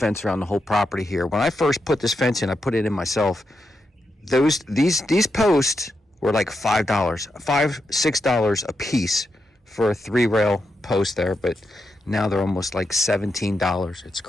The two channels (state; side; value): normal; both; correlation 0.85